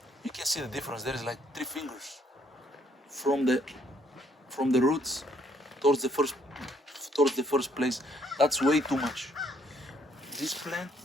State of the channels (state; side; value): normal; both; correlation 0.67